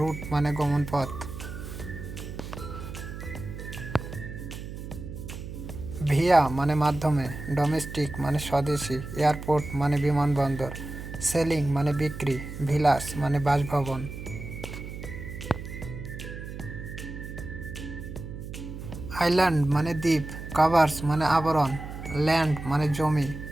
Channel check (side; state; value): right; noise; hum, 10 dB below the sound